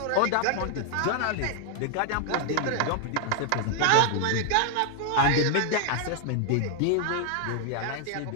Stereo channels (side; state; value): both; different; correlation 0.00